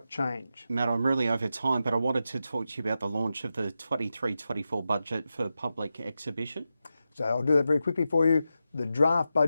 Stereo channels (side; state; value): both; inverted; correlation -0.90